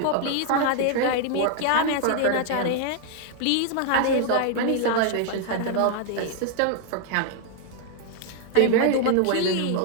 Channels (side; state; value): both; different; correlation 0.00